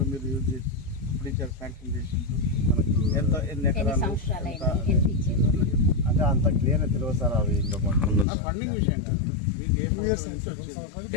మీరు యూజ్ చేసి ఇప్పుడు ఇచ్చారు, శాంక్షన్ చేసి మనకు ఎన్ని ఎకరాలు అంటే అంత క్లియర్గా తెలియదు సార్. అవి ఇంకా ఫండింగ్ విషయం కాదు, మీకు ఏ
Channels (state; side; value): drops out; right; at 8.2 s